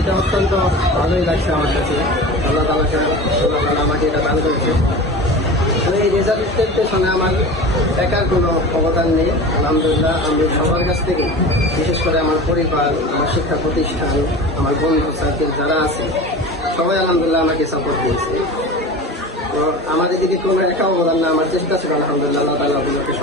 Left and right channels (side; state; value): both; normal; correlation 0.33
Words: অত্যন্ত ভালোই লাগছে আমার কাছে। আল্লাহ তাআলা আমাকে এটা দান করেছে। এই রেজাল্টের পেছনে আমার একার কোনো অবদান নেই। আলহামদুলিল্লাহ আমি সবার কাছ থেকে, বিশেষ করে আমার পরিবার, আমার শিক্ষা প্রতিষ্ঠান, আমার বন্ধু সার্কেল যারা আছে, সবাই আলহামদুলিল্লাহ আমাকে সাপোর্ট দিয়েছে। তো আমার এদিকে কোনো একা অবদান না, আমার চেষ্টা ছিল আলহামদুলিল্লাহ আল্লাহ তাআলা আমাকে